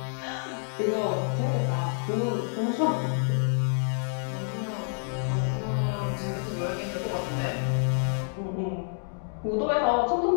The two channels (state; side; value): silent; right; digital silence